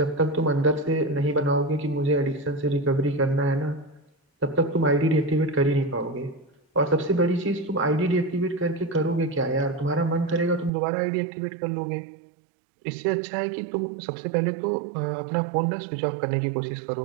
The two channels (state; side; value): drops out; left; at 10.7 s